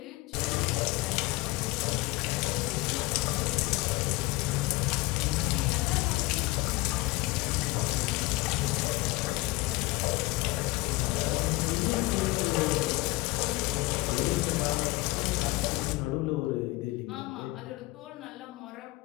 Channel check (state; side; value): quieter; right; 21.4 dB